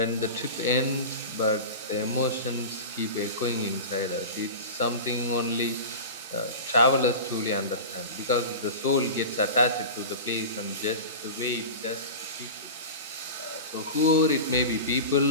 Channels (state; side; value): inverted; both; correlation -0.30